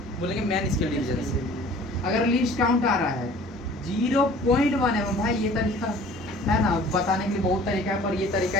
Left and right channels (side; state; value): both; normal; correlation 0.49